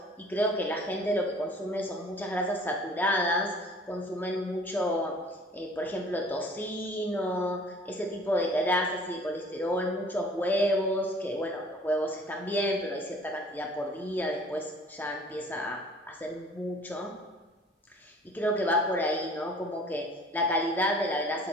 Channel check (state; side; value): normal; both; correlation 0.51